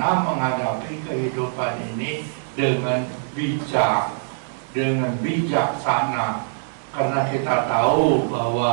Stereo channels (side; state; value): left; silent; digital silence